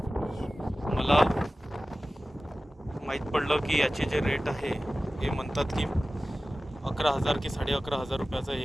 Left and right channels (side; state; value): both; normal; correlation 0.96